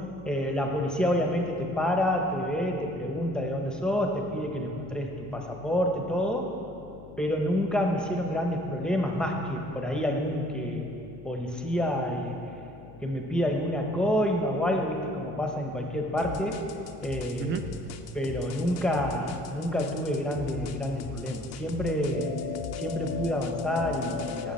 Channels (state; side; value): noise; left; hum, 19 dB below the sound